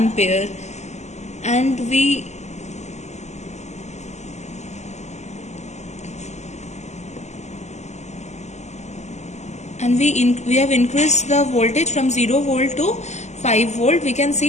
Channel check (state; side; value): late; right; 0.33 ms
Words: and we have increased the voltage from 0 volt to 5 volt. We can